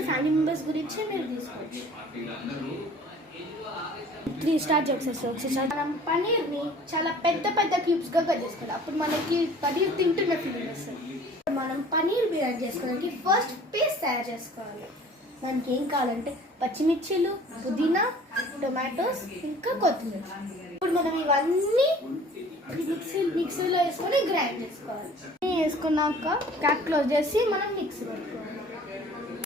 ఫ్యామిలీ మెంబర్స్ గురించి మీరు తీసుకోవచ్చు. స్టార్ట్ చేసేస్తాం. మనం పన్నీర్ని చాలా పెద్ద పెద్ద క్యూబ్స్గా కట్ చేసుకోవాలి. అప్పుడు మనకి పన్నీర్ తింటున్న ఫీలింగ్ వస్తుంది. మనం పన్నీర్ బిర్యానీ చేసుకోవడానికి ఫస్ట్ పేస్ట్ తయారు చేసుకోవాలి. మనకి ఏం కావాలంటే పచ్చిమిర్చిలు, పుదీనా, టొమాటోస్, ఇంకా కొత్తిమీర. ఇప్పుడు మనం ఇవన్నీ మిక్సీలో వేసుకొని గ్రైండ్ చేసుకోవాలి. వేసుకున్నాక క్యాప్ క్లోజ్ చేసి మనం మిక్సీ పెట్టుకోవాలి.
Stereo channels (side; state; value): both; normal; correlation 0.49